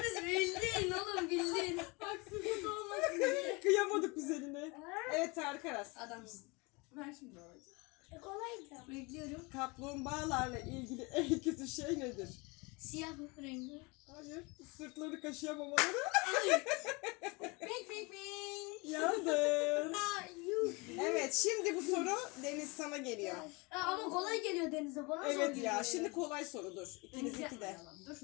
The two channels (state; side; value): quieter; right; 27.1 dB